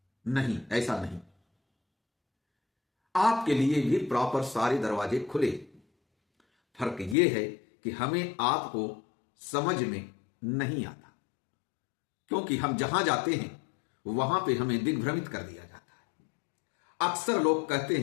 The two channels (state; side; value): drops out; right; at 7.2 s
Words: नहीं, ऐसा नहीं। आपके लिए भी प्रॉपर सारे दरवाजे खुले। फर्क यह है कि हमें आपको समझ में नहीं आता, क्योंकि हम जहां जाते हैं वहां पे हमें दिग्भ्रमित कर दिया जाता है। अक्सर लोग कहते